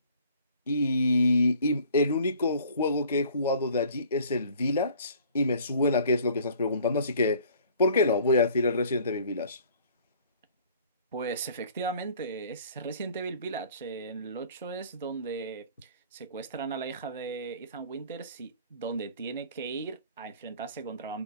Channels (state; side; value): inverted; both; correlation -0.53